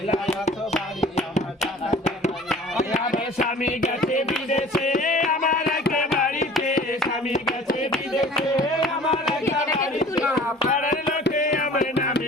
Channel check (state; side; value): normal; both; correlation 0.47